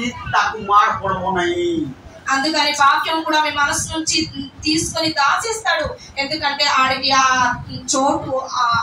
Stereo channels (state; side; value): identical; both; correlation 1.00